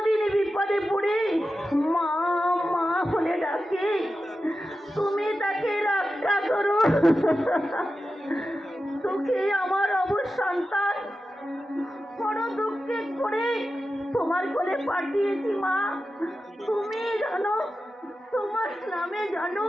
বিপদে পড়ে মা মা বলে ডাকে, তুমি তাকে রক্ষা করো। তোকে আমার অবশ সন্তান বড় দুঃখে করে তোমার কোলে পাঠিয়েছি মা। তুমি জানো তোমার নামে জানো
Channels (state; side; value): normal; both; correlation 0.92